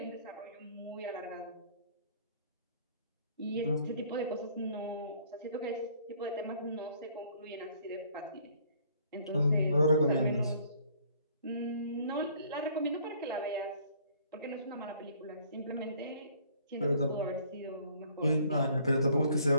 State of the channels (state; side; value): inverted; both; correlation -0.59